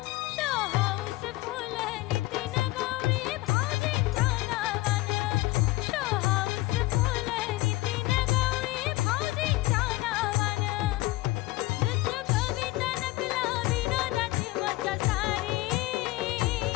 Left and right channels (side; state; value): right; quieter; 19.2 dB